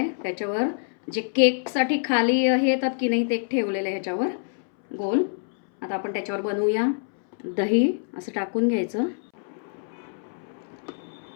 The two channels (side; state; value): right; silent; 61 dB below the other